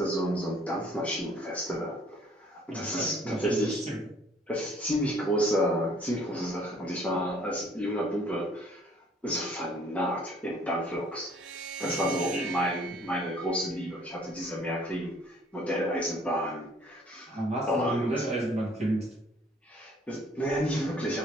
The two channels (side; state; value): both; normal; correlation 0.58